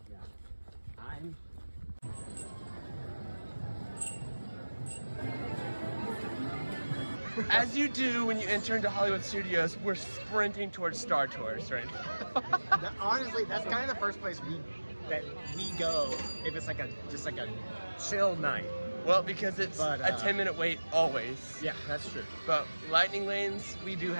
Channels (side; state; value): both; inverted; correlation -1.00